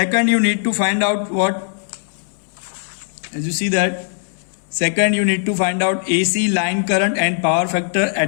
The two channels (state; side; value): silent; right; digital silence